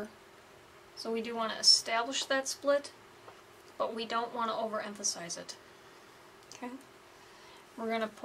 so we do want to establish that split, but we don't want to overemphasize it. Okay, we're going to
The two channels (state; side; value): identical; both; correlation 1.00